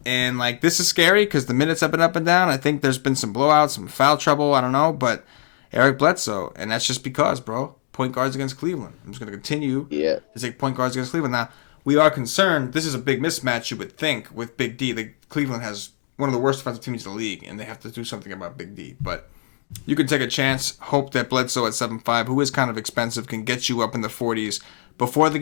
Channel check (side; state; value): right; silent; digital silence